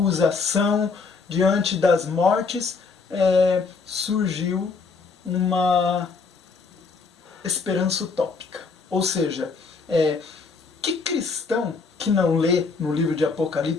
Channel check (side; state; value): right; quieter; 4.6 dB